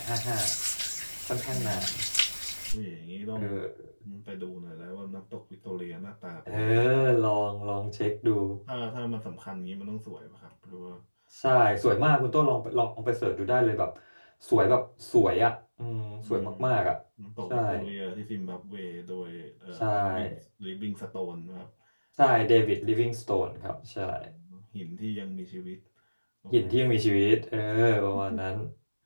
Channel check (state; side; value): inverted; both; correlation -1.00